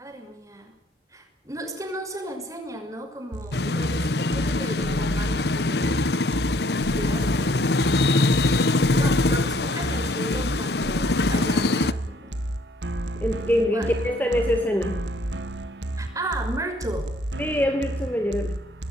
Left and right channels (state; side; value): normal; both; correlation 0.63